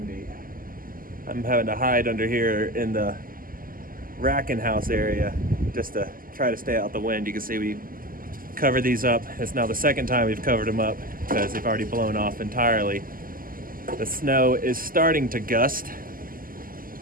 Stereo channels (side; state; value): left; late; 0.41 ms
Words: I'm having to hide under here in the racking house area just to try to stay out the wind. You can see we covered these up. It's now the second time we've covered them up because they've already blown off entirely. The snow is starting to gust,